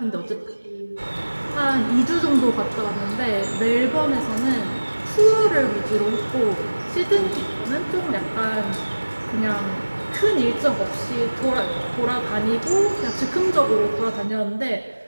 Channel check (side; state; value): both; inverted; correlation -1.00